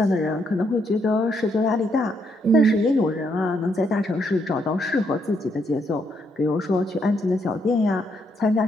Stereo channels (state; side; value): normal; both; correlation 0.75